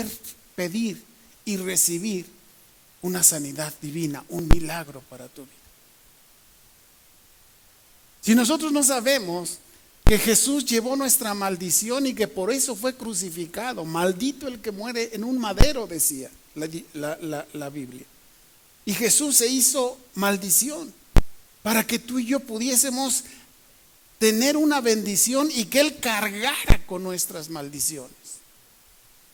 pedir y recibir una sanidad divina, un milagro para tu vida? Si nosotros no sabemos que Jesús llevó nuestra maldición y que por eso fue crucificado, maldito el que muere en un madero, decía la Biblia. Y Jesús se hizo maldición para que tú y yo pudiésemos tener una bendición y que Él cargara con nuestras maldiciones.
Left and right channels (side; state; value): both; identical; correlation 1.00